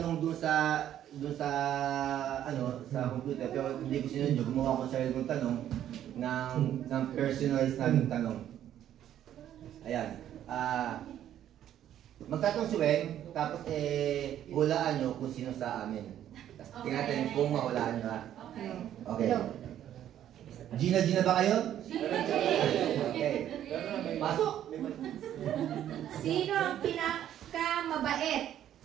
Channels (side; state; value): left; quieter; 11.1 dB